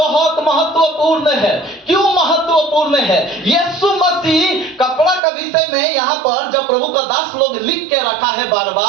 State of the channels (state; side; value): drops out; left; at 5.2 s